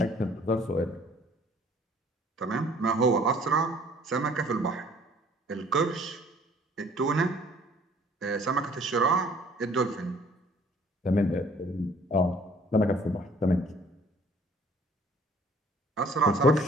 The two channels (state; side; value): normal; both; correlation 0.56